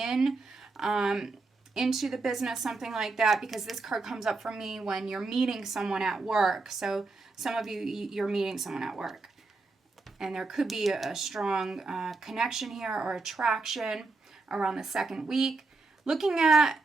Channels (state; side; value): quieter; left; 3.7 dB